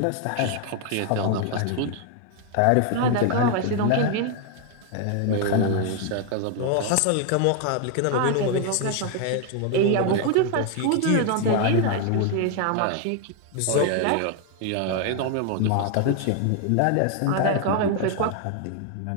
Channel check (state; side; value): different; both; correlation 0.01